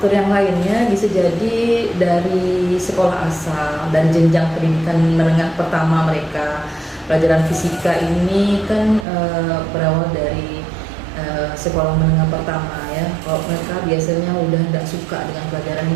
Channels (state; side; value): drops out; left; at 9.1 s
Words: yang lainnya bisa jadi dari sekolah asal dan jenjang pendidikan menengah pertama mereka. Pelajaran fisika ini kan berawal dari sekolah menengah pertama ya. Kalau mereka biasanya udah tidak suka dengan pelajaran